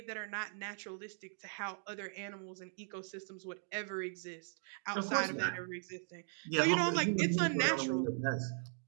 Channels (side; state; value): left; silent; 52 dB below the other